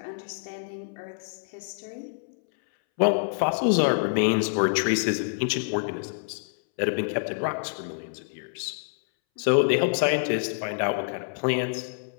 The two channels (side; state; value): right; silent; 60 dB below the other